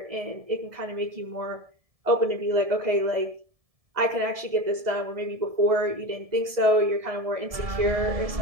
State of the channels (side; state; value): left; late; 1.7 ms